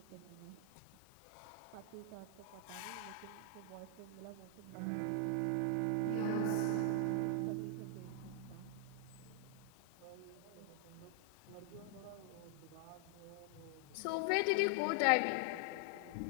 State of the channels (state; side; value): different; both; correlation 0.00